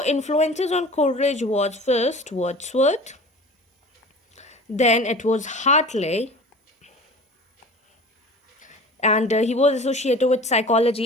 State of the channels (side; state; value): both; normal; correlation 0.39